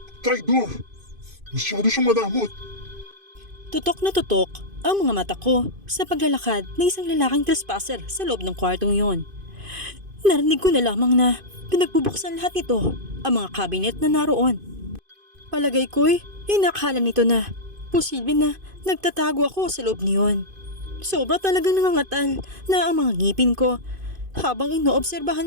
Traidor. Masyado siyang madamot. Tutok na tutok ang mga mata ko sa paglalakad ng isang lalaking trespasser sa loob ng kwartong yon. Narinig ko na lamang na pinagbubuksan lahat ito ang mga kabinet na naroon. Palagay ko'y inakala nito na posible na nagtatago ako sa loob niyon. Sobra talagang nangangatal na ang mga ngipin ko habang inoobserbahan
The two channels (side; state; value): left; late; 2.5 ms